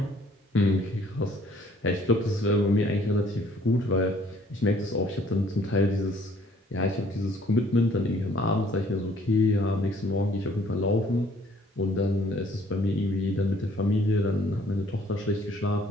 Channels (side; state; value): both; normal; correlation 0.60